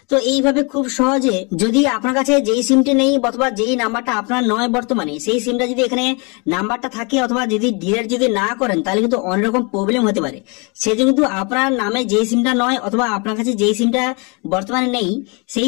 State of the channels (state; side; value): quieter; right; 31.8 dB